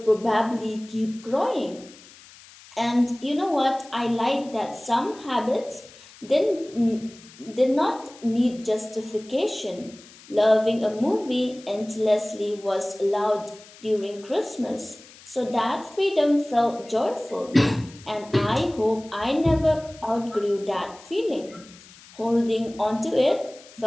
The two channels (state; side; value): noise; left; hiss, 22 dB below the sound